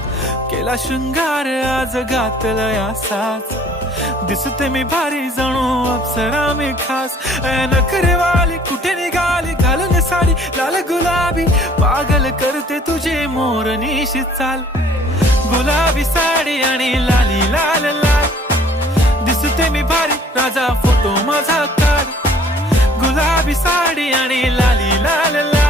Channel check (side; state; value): both; normal; correlation 0.56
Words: केला शृंगार आज घातला साज, दिसते मी भारी जणू अप्सरा मी खास. नखरेवाली कुठे निघाली घालून साडी लाल गुलाबी, पागल करते तुझे मोरनीशी चाल. गुलाबी साडी आणि लाली लाल लाल, दिसते मी भारी राजा फोटो माझा काढ. गुलाबी साडी आणि लाली लाल